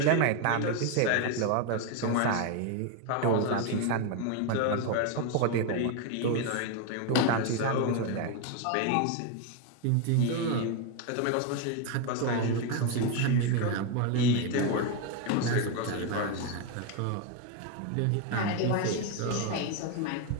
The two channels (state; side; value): different; both; correlation 0.02